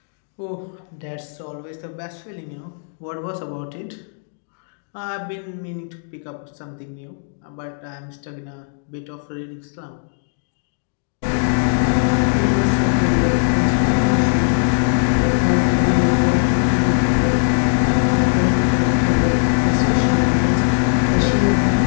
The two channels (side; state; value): right; silent; digital silence